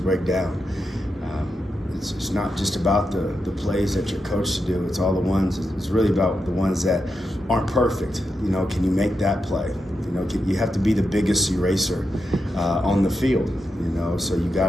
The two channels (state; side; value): normal; both; correlation 0.86